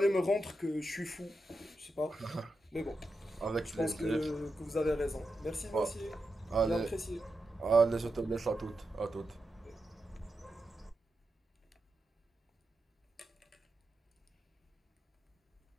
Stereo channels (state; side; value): normal; both; correlation 0.88